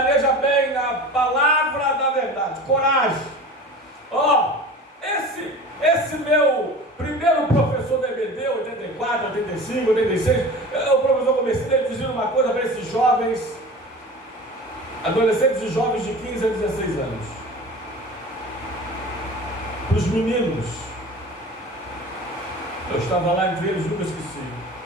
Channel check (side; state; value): both; normal; correlation 0.37